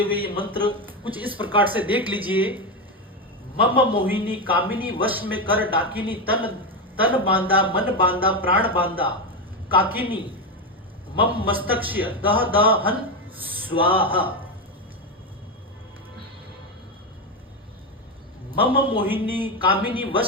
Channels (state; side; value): normal; both; correlation 0.12